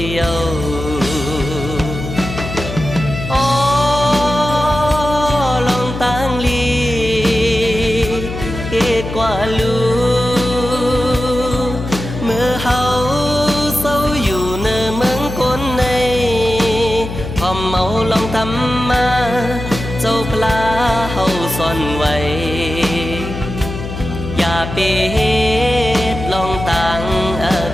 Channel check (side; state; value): left; noise; hum, 7 dB below the sound